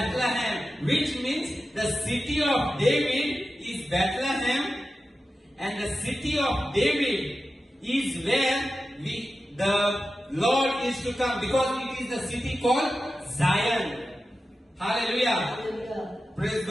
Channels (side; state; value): both; normal; correlation 0.93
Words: which means the city of David is Bethlehem, and the city of David is where the Lord is to come, because it is the city called Zion. Hallelujah. Hallelujah. Praise